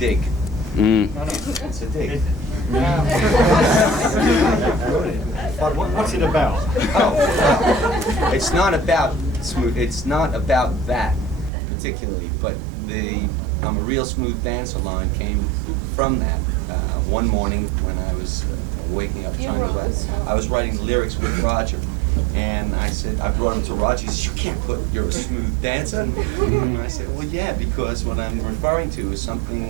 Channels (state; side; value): drops out; left; at 11.5 s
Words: Mm. No, It's a dig. But what's it about? It's not about smooth. It's not about that particularly, but I'm a real smooth dancer line came from that. One morning when I was waking up trying to write, I was writing lyrics with Roger, and I brought him to Roger. He said, "You can't put you're a smooth dancer." And I said, "Well, yeah, because what I'm referring to is